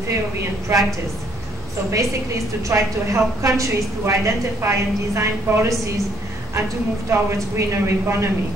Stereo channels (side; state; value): both; normal; correlation 0.65